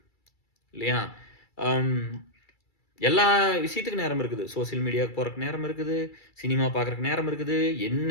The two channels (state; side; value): late; right; 2.3 ms